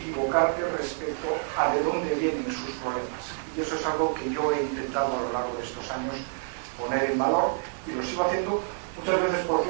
respecto a de dónde vienen sus problemas. Y eso es algo que yo he intentado a lo largo de estos años poner en valor, y lo sigo haciendo muchas veces, por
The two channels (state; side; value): silent; left; digital silence